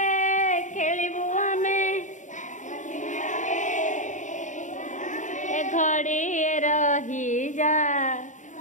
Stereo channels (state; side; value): late; right; 0.36 ms